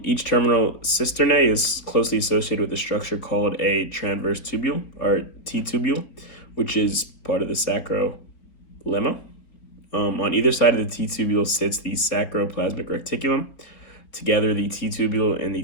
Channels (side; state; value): right; late; 4.1 ms